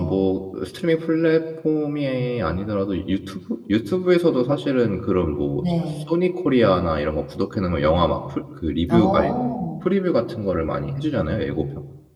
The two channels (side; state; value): both; identical; correlation 1.00